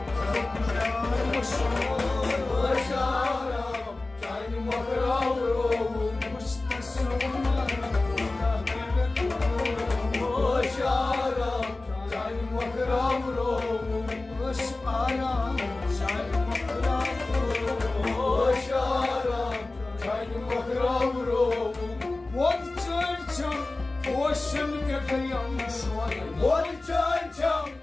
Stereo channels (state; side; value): quieter; right; 3.1 dB